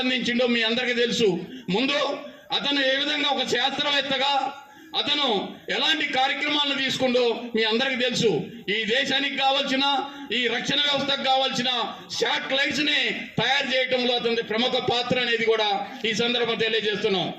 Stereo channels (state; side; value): identical; both; correlation 1.00